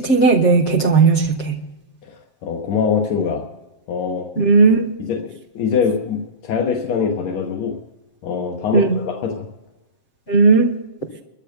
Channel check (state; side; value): late; right; 7.6 ms